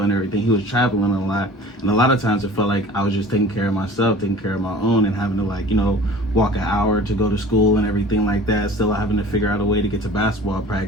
everything. He was traveling a lot. And a lot of times it felt like I was just taking care of myself, taking care of my own, and having to like, walk an hour to go to school and everything like that. Still having to figure out a way to get to basketball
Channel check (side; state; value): both; normal; correlation 0.43